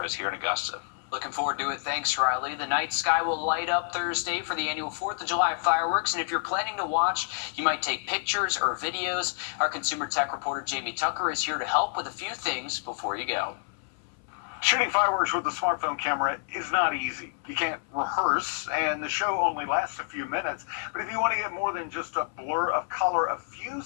us here in Augusta. Looking forward to it. Thanks, Riley. The night sky will light up Thursday for the annual 4th of July fireworks, and if you're planning to watch, you might take pictures or videos. Our consumer tech reporter, Jamie Tucker, is here to help with a few things before you go. Shooting fireworks with a smartphone camera is not easy. You can't rehearse, and the show only lasts a few minutes. But if you want to get more than just a blur of color, a few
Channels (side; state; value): right; silent; 59 dB below the other